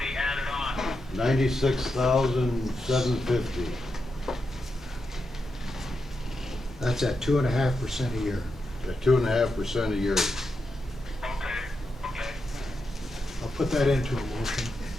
added on. 96,750. that's at 2.5% a year. At 2.5% a year. Okay. I'll put that into a motion.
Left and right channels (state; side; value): normal; both; correlation 0.86